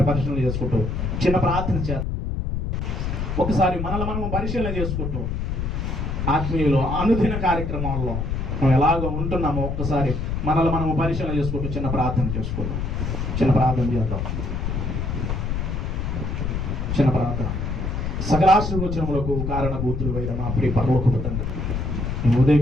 పరిశీలన చేసుకుంటూ చిన్న ప్రార్థన చేద్దాం. ఒకసారి మనల్ని మనం పరిశీలన చేసుకుంటూ ఆత్మీయులు అనుదిన కార్యక్రమాల్లో మనం ఎలాగో ఉంటున్నామో ఒక్కసారి మనల్ని మనము పరిశీలన చేసుకుంటూ చిన్న ప్రార్థన చేసుకుంటాం. చిన్న ప్రార్థన. సకలాశీర్వచనములకు కారణభూతులు అయిన మా ప్రియ పరలోకపు తండ్రి, ఈ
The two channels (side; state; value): left; noise; rumble, 2 dB below the sound